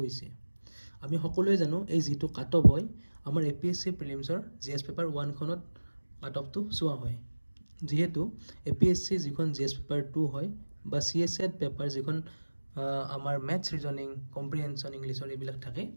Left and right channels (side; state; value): both; inverted; correlation -1.00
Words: আমি সকলোৱে জানো এই যিটো কাট অফ হয় আমাৰ APSC প্ৰিলিমছৰ GS পেপাৰ 1খনত কাট অফটো চোৱা হয়। যিহেতু APSC যিখন GS পেপাৰ 2 হয় বা CSET পেপাৰ যিখন আমাৰ মেথছ ৰিজনিং কম্প্ৰিহেনশ্যন ইংলিছৰ এইবিলাক থাকে,